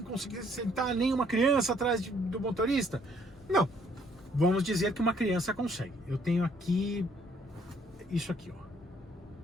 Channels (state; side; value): normal; both; correlation 0.65